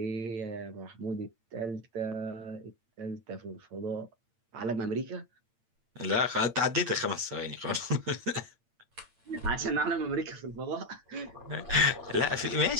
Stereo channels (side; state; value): left; late; 8.8 ms